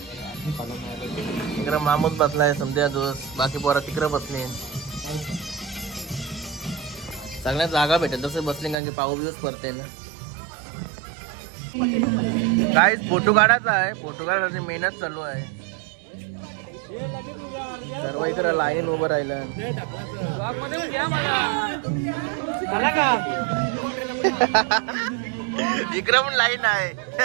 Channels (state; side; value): drops out; left; at 8.8 s